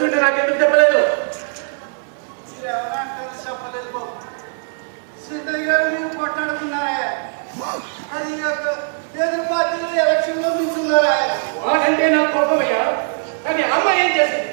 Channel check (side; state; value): left; silent; 58 dB below the other